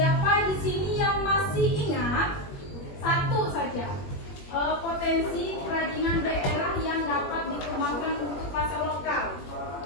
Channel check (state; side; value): late; right; 21 ms